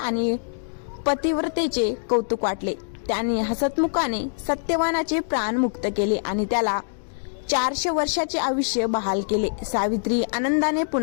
पतिव्रतेचे कौतुक वाटले. त्यांनी हसतमुखाने सत्यवानाचे प्राण मुक्त केले आणि त्याला 400 वर्षाचे आयुष्य बहाल केले. सावित्री आनंदाने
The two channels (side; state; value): right; silent; digital silence